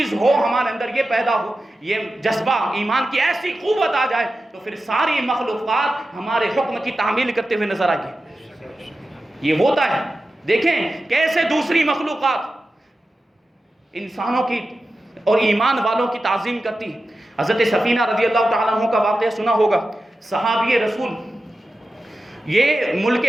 ہو ہمارے اندر، یہ پیدا ہو، یہ جذبہ ایمان کی ایسی قوت آ جائے تو پھر ساری مخلوقات ہمارے حکم کی تعمیل کرتے ہوئے نظر آئے گی۔ یہ ہوتا ہے، دیکھیں کیسے دوسری مخلوقات انسانوں کی اور ایمان والوں کی تعظیم کرتی ہے۔ حضرت سفینہ رضی اللہ تعالیٰ عنہ کا واقعہ سنا ہوگا، صحابی رسول یہ ملک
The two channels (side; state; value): both; normal; correlation 0.93